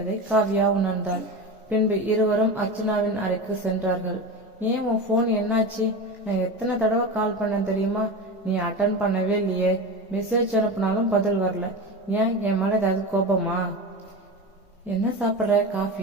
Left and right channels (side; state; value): both; normal; correlation 0.25